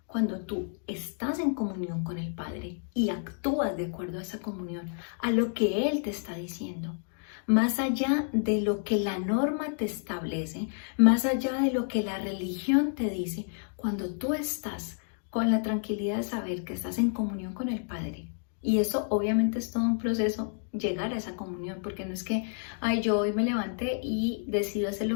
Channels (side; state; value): right; silent; 58 dB below the other